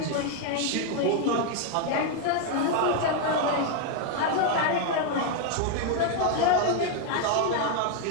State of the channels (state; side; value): different; both; correlation 0.01